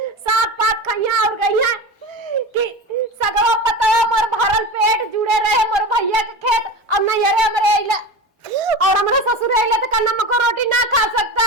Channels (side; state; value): both; normal; correlation 0.28